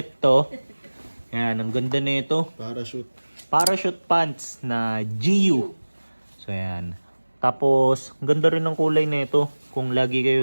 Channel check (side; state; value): both; inverted; correlation -1.00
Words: to. Ayan, ang ganda na ito. Parachute. Parachute pants na GU. So, ayan. Tapos, ang ganda rin ng kulay na ito. Kung lagi